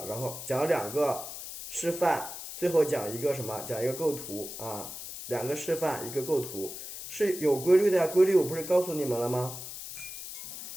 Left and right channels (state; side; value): noise; left; hiss, 10 dB below the sound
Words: 然后讲2个示范，最后讲一个什么？讲一个构图啊。2个示范，一个构图，是有规律的呀。规律我不是告诉你们了吗